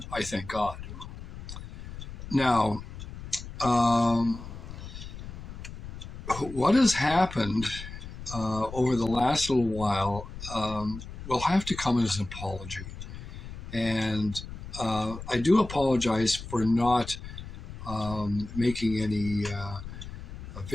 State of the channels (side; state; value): left; noise; rumble, 11 dB below the sound